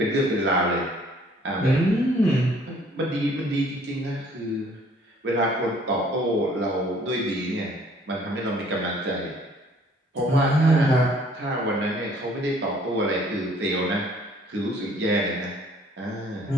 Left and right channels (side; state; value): both; normal; correlation 0.58